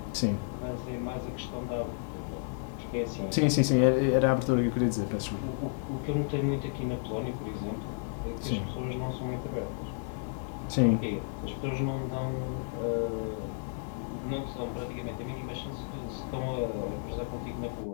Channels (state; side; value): silent; right; 56 dB below the other